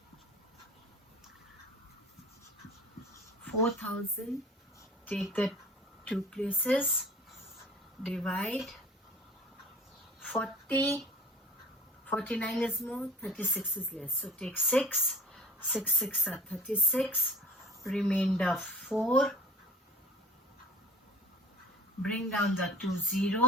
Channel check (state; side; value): normal; both; correlation 0.44